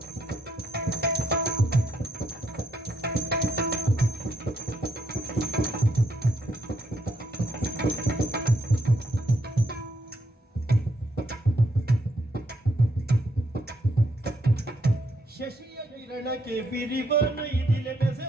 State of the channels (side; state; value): both; normal; correlation 0.75